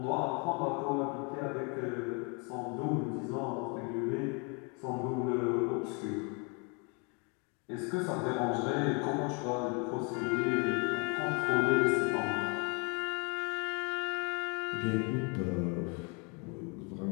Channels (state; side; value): quieter; right; 33.8 dB